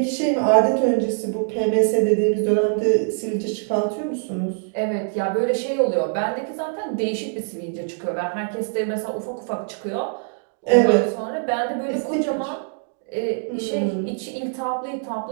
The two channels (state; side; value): silent; left; digital silence